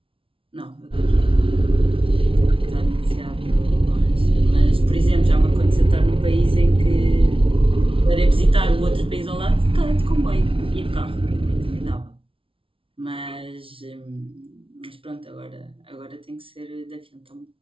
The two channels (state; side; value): late; left; 0.26 ms